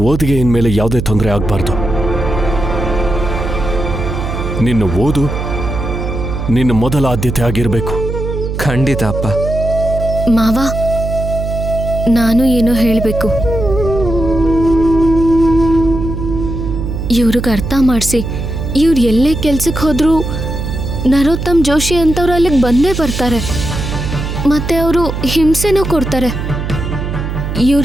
ಓದಿಗೆ ಇನ್ಮೇಲೆ ಯಾವುದೇ ತೊಂದರೆ ಆಗಬಾರ್ದು. ನಿನ್ನ ಓದು ನಿನ್ನ ಮೊದಲ ಆದ್ಯತೆ ಆಗಿರಬೇಕು. ಖಂಡಿತ ಅಪ್ಪ. ಮಾವ, ನಾನು ಏನೋ ಹೇಳಬೇಕು. ಇವ್ರಿಗೆ ಅರ್ಥ ಮಾಡಿಸಿ, ಇವ್ರು ಎಲ್ಲೇ ಕೆಲ್ಸಕ್ಕೆ ಹೋದ್ರೂ ನರೋತ್ತಮ್ ಜೋಶಿ ಅಂತವ್ರು ಅಲ್ಲಿಗೆ ಬಂದೇ ಬರ್ತಾರೆ. ಮತ್ತೆ ಅವರು ಹಿಂಸೆನೂ ಕೊಡ್ತಾರೆ.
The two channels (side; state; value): right; noise; hum, 4 dB below the sound